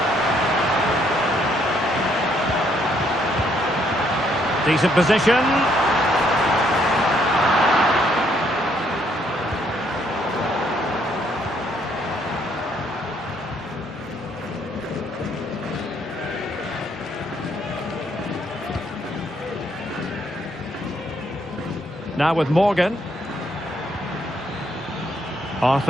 Decent position. Now with Morgan.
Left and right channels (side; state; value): both; normal; correlation 0.70